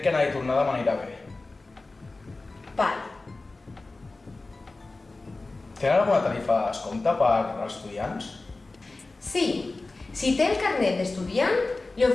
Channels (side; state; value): right; quieter; 3.3 dB